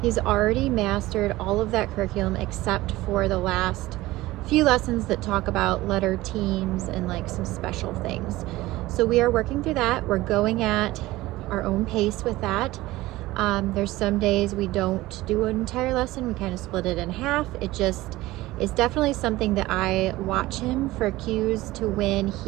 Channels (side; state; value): left; quieter; 18.1 dB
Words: He's already mastered all of that curriculum except for the last few lessons that talk about letter teams and like some special things. So we are working through that. We're going at our own pace with that. There's some days we don't do an entire lesson. We kind of split it in half. It just is definitely something that I watch him for cues to when